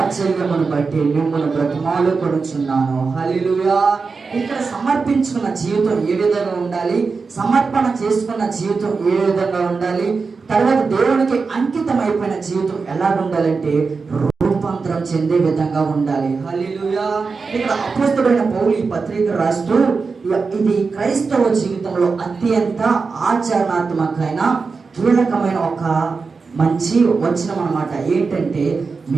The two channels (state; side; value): quieter; left; 4.7 dB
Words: బట్టి మిమ్మల్ని బ్రతిమాలుకొనుచున్నాను. హల్లెలూయా. ఇక్కడ సమర్పించుకున్న జీవితం ఏ విధంగా ఉండాలి, సమర్పణ చేసుకున్న జీవితం ఏ విధంగా ఉండాలి, తర్వాత దేవునికి అంకితం అయిపోయిన జీవితం ఎలా ఉండాలంటే రూపాంతరం చెందే విధంగా ఉండాలి. హల్లెలూయా. ఇక్కడ అపోస్తలుడైన పౌలు ఈ పత్రిక రాస్తూ, ఇది క్రైస్తవ జీవితంలో అత్యంత ఆచరణాత్మకమైన కీలకమైన ఒక మంచి వచనం అన్నమాట. ఏంటంటే